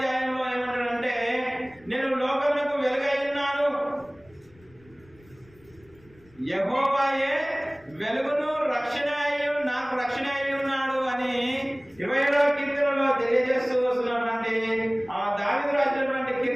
ఏమంటాడంటే, నేను లోకమునకు వెలుగై ఉన్నాను. యెహోవాయే వెలుగును రక్షణ నాకు రక్షణ అయి ఉన్నాడు అని 27వ కీర్తనలో తెలియజేస్తూ వస్తున్నటువంటి దావీదు రాసినటువంటి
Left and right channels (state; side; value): noise; left; rumble, 28 dB below the sound